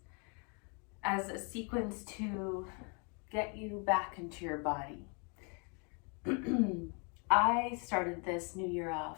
as a sequence to get you back into your body. I started this new year off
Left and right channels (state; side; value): quieter; right; 35.7 dB